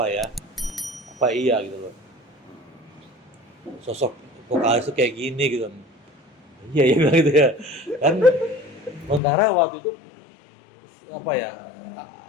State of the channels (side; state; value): right; drops out; at 9.2 s